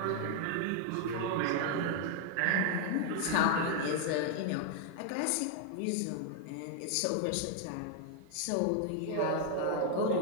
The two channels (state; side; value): different; both; correlation 0.00